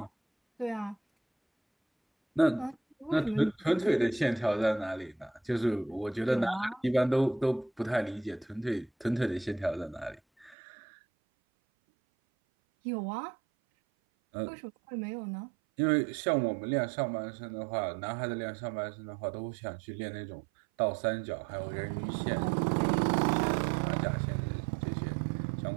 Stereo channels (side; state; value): left; drops out; at 10.6 s